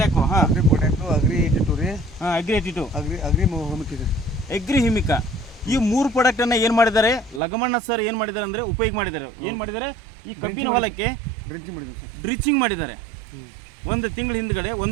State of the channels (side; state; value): left; drops out; at 7.4 s